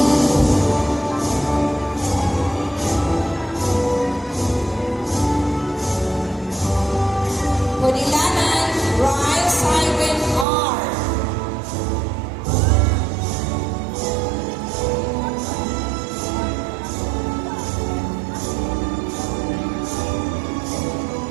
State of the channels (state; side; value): drops out; left; at 10.5 s